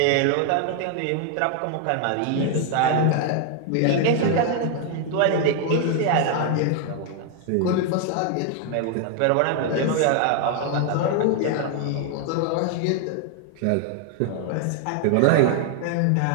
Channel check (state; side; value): different; both; correlation 0.00